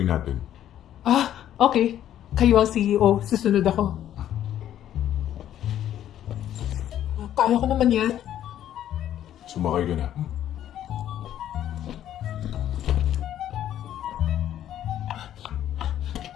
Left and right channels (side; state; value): right; quieter; 11.3 dB